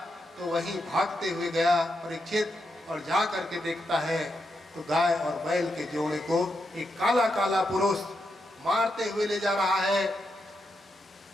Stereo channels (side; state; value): both; normal; correlation 0.84